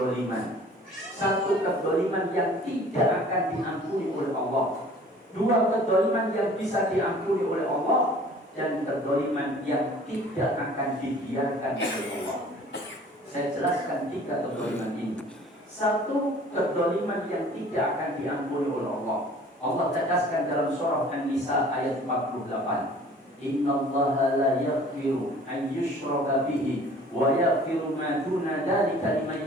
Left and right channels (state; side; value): normal; both; correlation 0.49